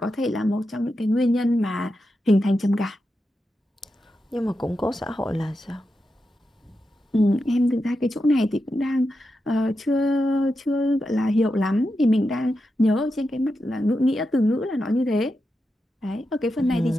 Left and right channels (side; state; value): both; normal; correlation 0.88